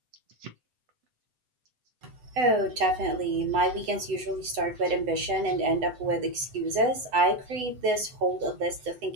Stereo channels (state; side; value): late; left; 8.0 ms